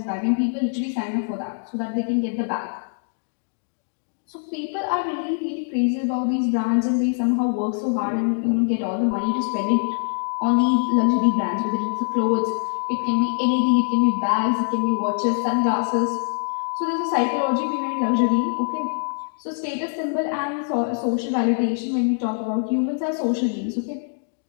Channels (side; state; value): right; silent; digital silence